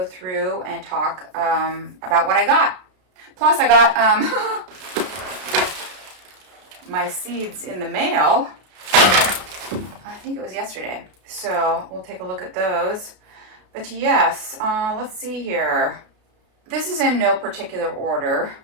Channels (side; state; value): left; late; 32 ms